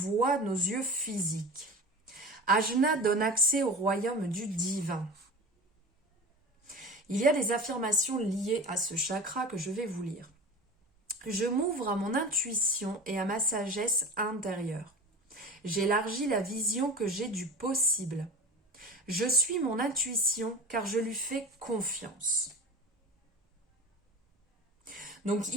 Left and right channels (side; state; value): both; normal; correlation 0.34